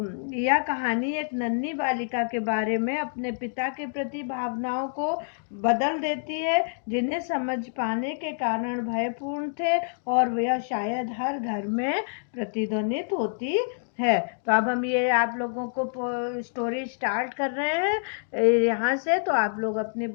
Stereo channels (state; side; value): silent; right; digital silence